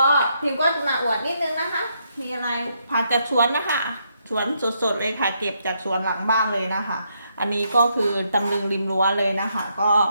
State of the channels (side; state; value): both; inverted; correlation -0.76